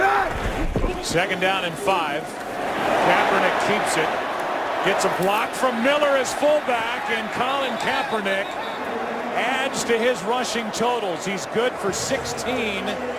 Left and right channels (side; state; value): both; identical; correlation 1.00